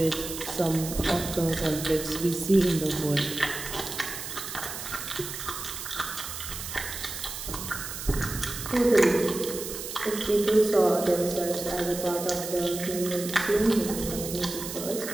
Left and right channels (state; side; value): noise; right; hiss, 8 dB below the sound